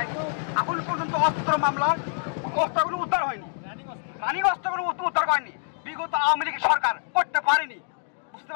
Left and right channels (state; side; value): silent; right; 61 dB below the other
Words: এখন পর্যন্ত অস্ত্র মামলা অস্ত্রগুলো উদ্ধার হয়নি, রানিং অস্ত্রগুলো উদ্ধার করেনি। বিগত আওয়ামী লীগ সরকার করতে পারেনি, বুঝতে